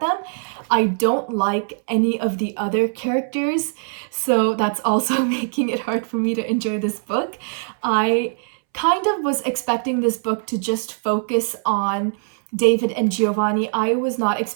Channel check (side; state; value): left; silent; 63 dB below the other